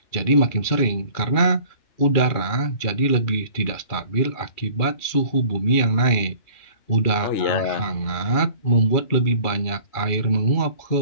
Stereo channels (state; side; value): late; right; 2.4 ms